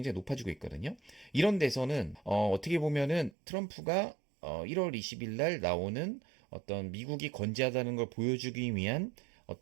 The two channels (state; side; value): drops out; left; at 3.3 s